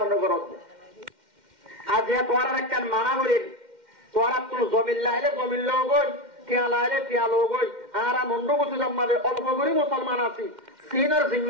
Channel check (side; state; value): left; late; 2.1 ms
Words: করতে আর যে তোরা একটা মানা করি তোরা তোর জমিন লাইলে জমিন লোক গই টিয়া লাইলে টিয়া লোক গই আর মন্ড বসে জন্মালে অল্প করে মুসলমান আছি সিনের